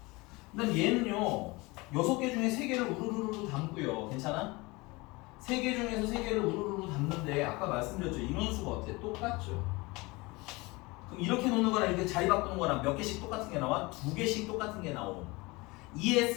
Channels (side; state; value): right; quieter; 24.0 dB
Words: 그 다음 얘는요 6개 중에 3개를 우르르르 담고요. 괜찮아? 3개 중에서 3개를 우르르르 담는데 아까 말씀드렸죠. 인원수가 어때? 똑같죠. 그럼 이렇게 놓는 거랑 이렇게 자리 바꾸는 거랑 몇 개씩 똑같은 게 나와? 2개씩 똑같은 게 나옴.